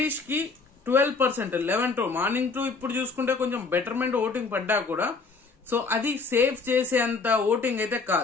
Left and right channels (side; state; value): right; quieter; 4.3 dB